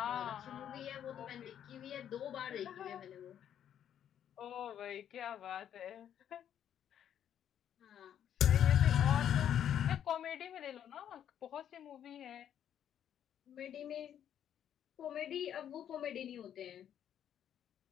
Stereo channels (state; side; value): quieter; right; 9.8 dB